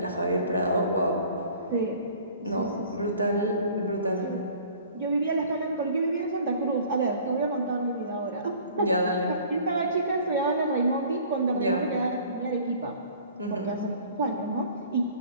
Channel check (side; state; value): both; inverted; correlation -0.50